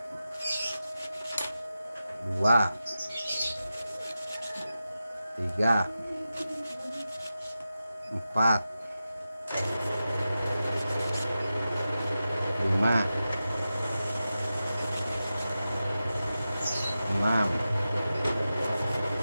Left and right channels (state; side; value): inverted; both; correlation -0.93